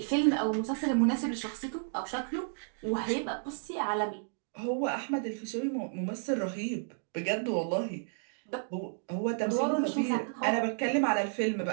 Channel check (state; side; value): silent; left; digital silence